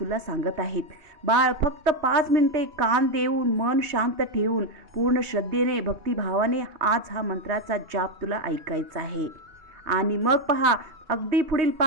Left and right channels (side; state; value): left; late; 2.9 ms